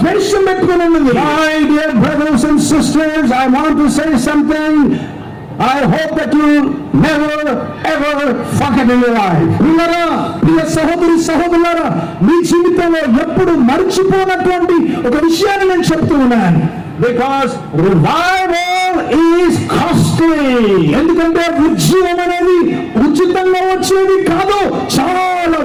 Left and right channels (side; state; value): both; identical; correlation 1.00